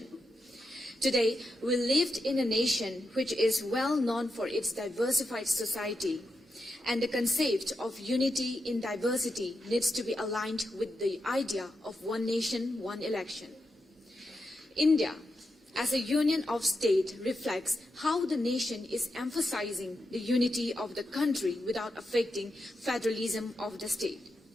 Today, we live in a nation which is well known for its diversified society, and the concept of unity in diversity needs to be aligned with the idea of one nation, one election. India, as a union of states, reflects how the nation is emphasizing the unity of the country without affecting federalism of the state.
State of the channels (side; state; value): both; normal; correlation 0.87